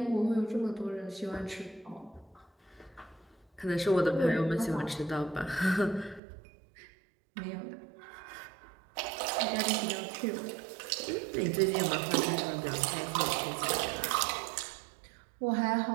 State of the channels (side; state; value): left; drops out; at 6.2 s